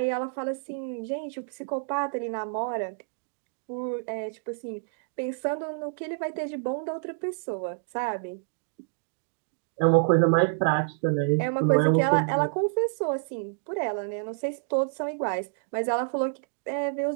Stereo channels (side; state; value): left; silent; digital silence